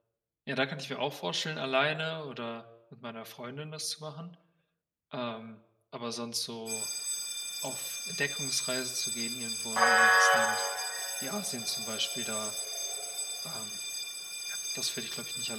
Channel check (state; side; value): identical; both; correlation 1.00